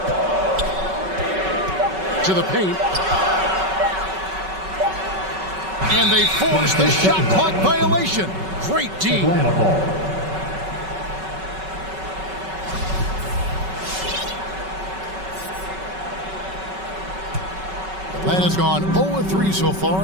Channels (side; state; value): left; late; 5.3 ms